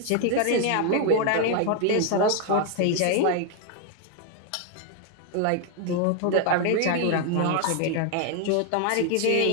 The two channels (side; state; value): both; different; correlation 0.00